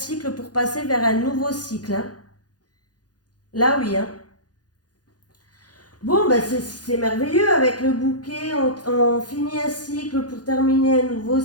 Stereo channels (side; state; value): right; late; 0.69 ms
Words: pour passer vers un nouveau cycle, hein. Là, oui, hein. Bon, ben c'est merveilleux avec le bouquet. On finit un cycle pour terminer un nouveau